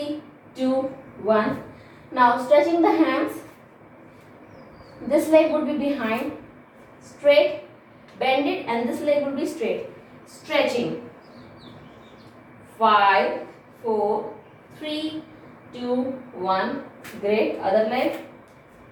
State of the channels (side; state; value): both; identical; correlation 1.00